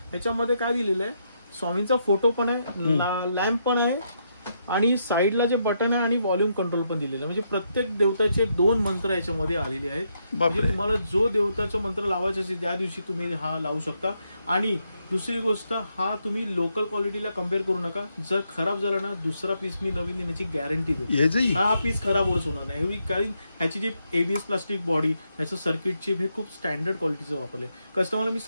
ह्याच्यामध्ये काय दिलेलं आहे, स्वामींचा फोटो पण आहे, लॅम्प पण आहे, आणि साईडला जे बटन आहे आणि व्हॉल्यूम कंट्रोल पण दिलेलं आहे. म्हणजे प्रत्येक देवताचे 2 मंत्र याच्यामध्ये आलेले आहेत. म्हणजे तुम्हाला जो देवताचा मंत्र लावायचा असेल त्या दिवशी तुम्ही हा लावू शकता. आणि दुसरी गोष्ट, हा तुम्ही लोकल क्वालिटीला कम्पेअर करू नका. जर खराब झाला ना, दुसरा पीस मी नवीन देण्याची गॅरंटी देतो. हा पीस खराब होच होणार नाही. कारण ह्याची जी ABS प्लास्टिक बॉडी, ह्याचं सर्किट चिप हे खूप स्टँडर्ड क्वालिटीचं वापरलंय. कस्टमरला मी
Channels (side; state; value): both; inverted; correlation -0.79